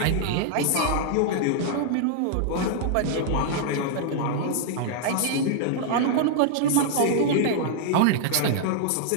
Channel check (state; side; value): different; both; correlation -0.01